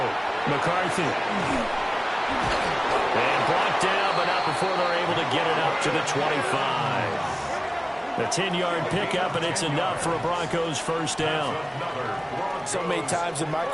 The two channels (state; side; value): identical; both; correlation 1.00